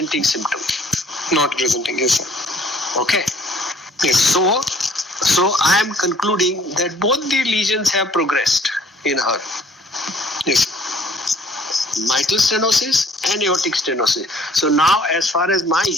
symptom. Not presenting. Yes, sir. Okay. Yes. So I am concluding that both the lesions have progressed in her. Yes. Mitral stenosis and aortic stenosis. So now, as far as my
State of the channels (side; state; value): both; normal; correlation 0.57